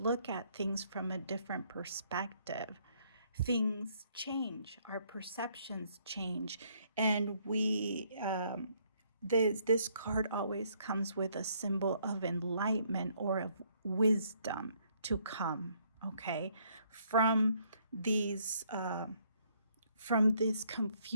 at things from a different perspective, things change, our perceptions change, and this card always comes with a symbol of enlightenment or of wisdom to come, okay, from this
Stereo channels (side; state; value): both; inverted; correlation -0.67